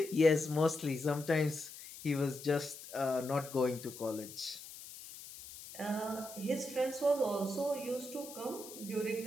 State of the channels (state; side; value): noise; left; hiss, 14 dB below the sound